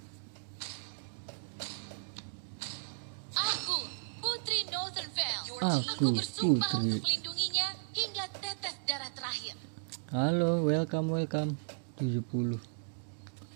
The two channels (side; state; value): left; silent; digital silence